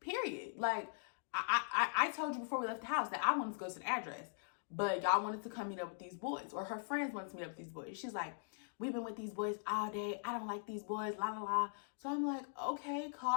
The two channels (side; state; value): right; silent; digital silence